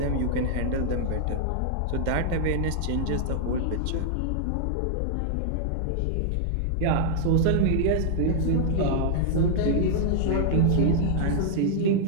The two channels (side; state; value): both; different; correlation -0.01